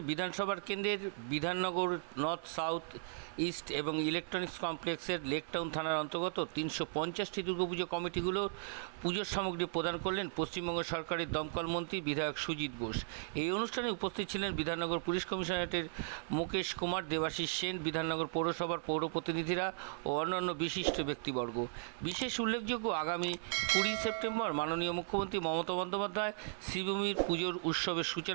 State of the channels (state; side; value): silent; left; 53 dB below the other